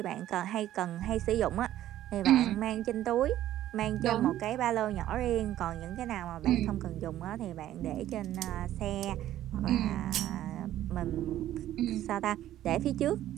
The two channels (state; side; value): quieter; left; 12.9 dB